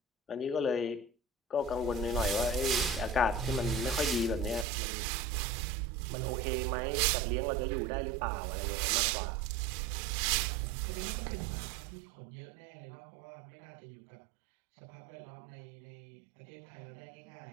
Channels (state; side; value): drops out; left; at 4.7 s